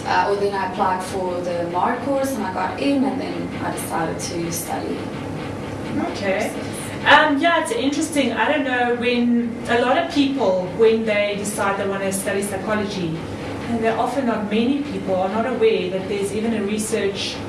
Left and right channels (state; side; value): identical; both; correlation 1.00